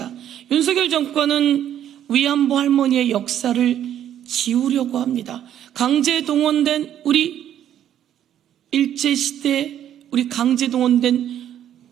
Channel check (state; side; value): quieter; left; 10.6 dB